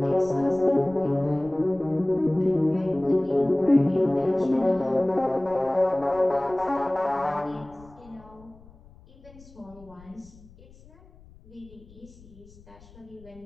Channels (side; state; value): left; noise; rumble, 24 dB below the sound